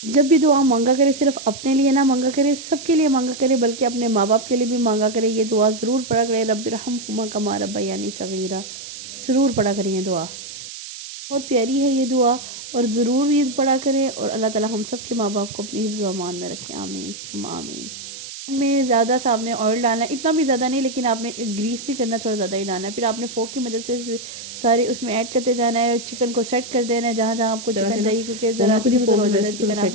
जब भी दुआ मांगा करे सिर्फ अपने लिए ना मांगा करे, सबके लिए मांगा करे, बल्कि अपने माँ बाप के लिए भी मांगा करे। ये दुआ ज़रूर पढ़ा करें, रब्बिरहम्हुमा कमा रब्बयानी सगीरा, ज़रूर पढ़ा करें ये दुआ, बहुत प्यारी है ये दुआ। और ज़रूर ये पढ़ा करें और अल्लाह ताला हम सब के माँ बाप को अपनी हिफ्ज़ व अमान में रखें, आमीन सुम्मा आमीन। में ज़्यादा सा आपने ऑयल डालना है, इतना भी ज़्यादा नहीं, लेकिन आपने ग्रीस नहीं करना, थोड़ा ज़्यादा ही डालना है। फिर आपने फोक की मदद से सारे उसमें ऐड करते जाना है। चिकन को सेट कर देना है जहाँ जहाँ आपको चिकन चाहिए, क्योंकि ज़रा इधर उधर हो जाता है चिकन,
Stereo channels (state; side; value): noise; right; hiss, 12 dB below the sound